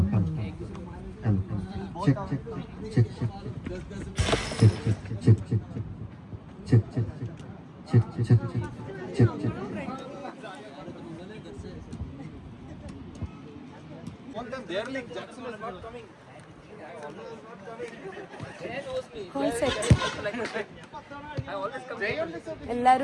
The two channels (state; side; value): identical; both; correlation 1.00